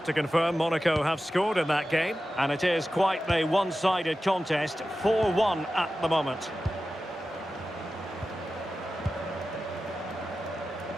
to confirm, Monaco have scored in that game, and it is quite a one-sided contest, 4-1 at the moment.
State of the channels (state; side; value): normal; both; correlation 0.93